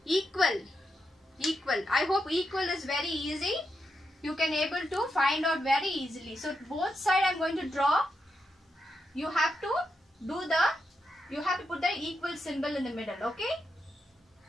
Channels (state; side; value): normal; both; correlation 0.84